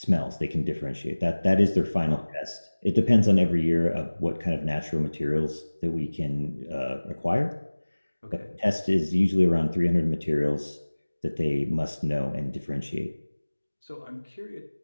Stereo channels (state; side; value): inverted; both; correlation -1.00